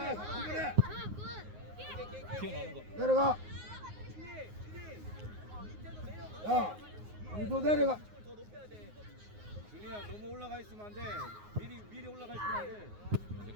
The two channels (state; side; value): late; left; 9.5 ms